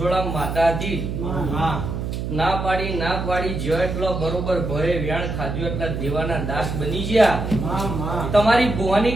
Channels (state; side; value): noise; right; hum, 4 dB below the sound